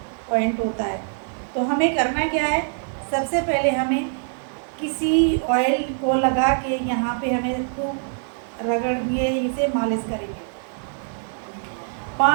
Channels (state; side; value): silent; left; digital silence